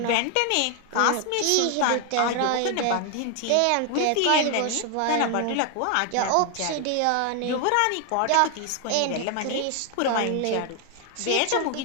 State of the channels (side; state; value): both; different; correlation 0.00